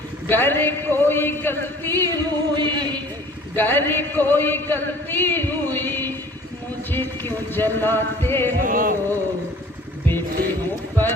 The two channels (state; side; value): normal; both; correlation 0.50